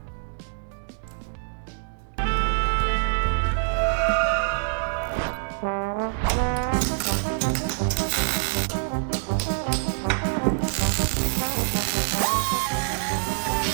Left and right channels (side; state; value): left; silent; digital silence